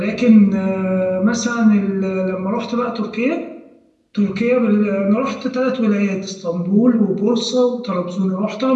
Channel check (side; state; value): both; identical; correlation 1.00